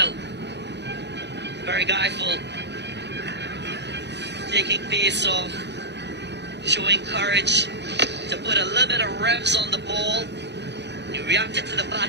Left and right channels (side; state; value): left; late; 0.50 ms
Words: Very guileful. Taking pace off. Showing courage to put a little bit of revs on the ball. He reacted to the